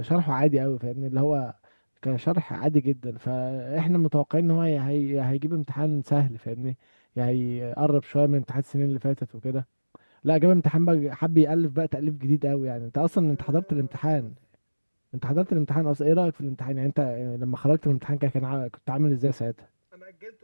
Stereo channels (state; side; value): inverted; both; correlation -1.00